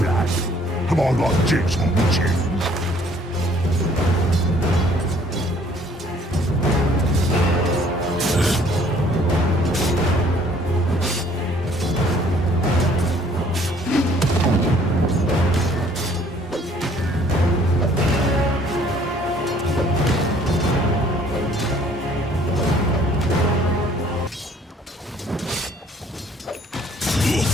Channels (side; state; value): both; normal; correlation 0.59